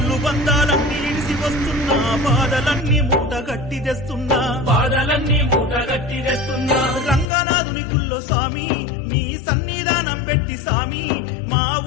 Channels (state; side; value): drops out; right; at 7.2 s